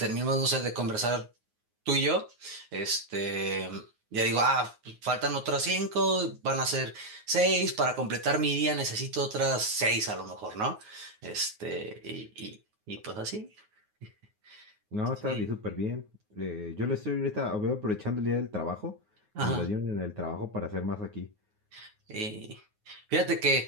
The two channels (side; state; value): left; late; 9.5 ms